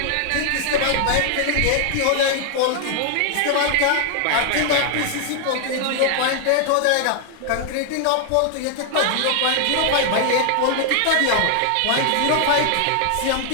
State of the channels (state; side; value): different; both; correlation 0.00